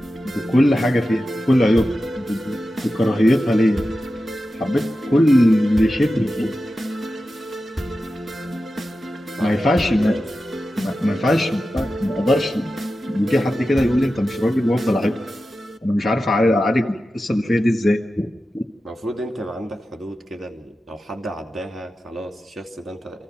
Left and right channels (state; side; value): normal; both; correlation 0.93